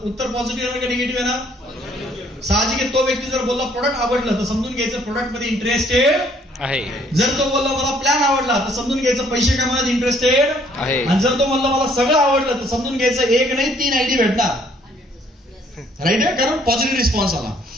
उत्तर पॉझिटिव्ह येणार का निगेटिव्ह येणार? साहजिक आहे. तो व्यक्ती जर बोलला प्रोडक्ट आवडलं तर समजून घ्यायचं प्रोडक्ट मध्ये इंटरेस्टेड आहे. जर तो बोलला मला प्लॅन आवडला तर समजून घ्यायचं पैसे कमावण्यात इंटरेस्टेड आहे. आणि जर तो म्हणला मला सगळं आवडलं तर समजून घ्यायचं एक नाही 3 आयडी भेटणार. राईट आहे, कारण पॉझिटिव्ह रिस्पॉन्स आला.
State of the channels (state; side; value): normal; both; correlation 0.63